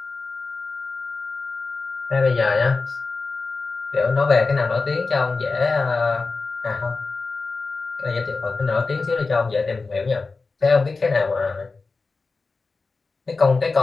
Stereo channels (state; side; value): quieter; right; 4.0 dB